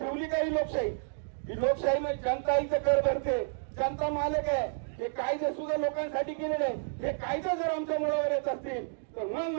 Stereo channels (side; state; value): left; silent; digital silence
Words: काही लोकशाही? ही लोकशाही म्हणजे जनता इथं कर भरते, जनता मालक आहे. हे कायदे सुद्धा लोकांसाठी केलेले आहे. हे कायदे जर आमच्या मुळावर येत असतील तर मग